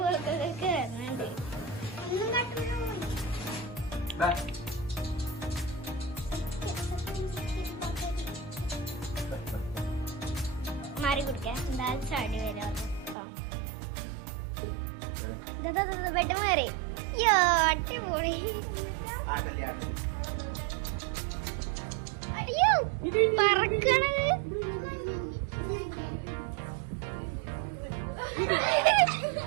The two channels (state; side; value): drops out; left; at 13.2 s